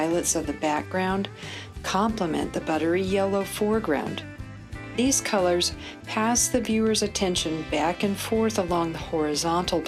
of the background complement the buttery yellow foreground. These colors pass the viewer's attention back and forth along the horizontal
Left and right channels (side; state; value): both; identical; correlation 1.00